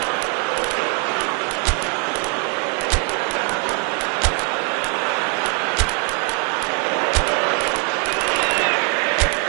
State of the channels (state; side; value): quieter; left; 38.2 dB